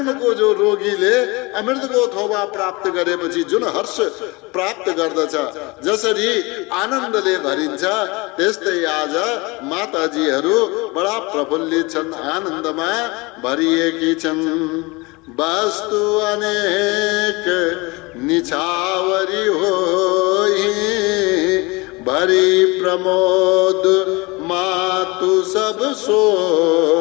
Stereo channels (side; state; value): right; quieter; 25.3 dB